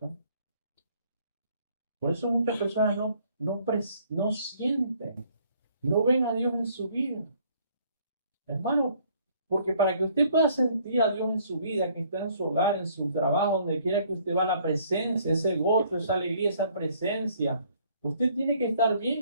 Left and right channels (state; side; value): inverted; both; correlation -0.62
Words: Por eso muchas personas no sienten, no ven a Dios en su vida. Hermano, porque para que usted pueda sentir a Dios en su vida, que está en su hogar, en su trabajo, donde quiera que usted va, la presencia, ese gozo, esa alegría, esa presencia, usted tiene que estar